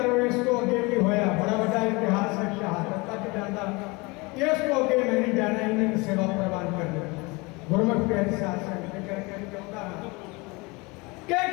इसको अगे भी होया बड़ा बड़ा इतिहास है, शहादत तक जाता। इसको अगे मैं नहीं जाना, इन्हें सेवा प्रवान कर दो। गुरमुख प्यारे शासन करके चाहता कि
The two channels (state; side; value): quieter; right; 25.9 dB